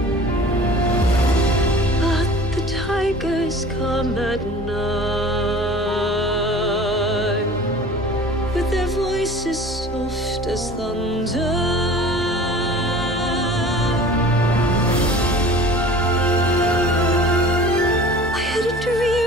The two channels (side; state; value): both; normal; correlation 0.44